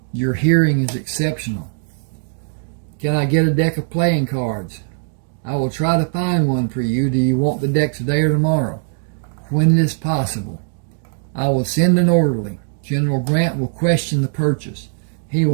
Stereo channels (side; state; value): left; silent; digital silence